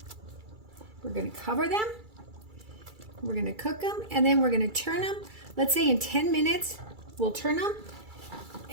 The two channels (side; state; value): left; late; 2.3 ms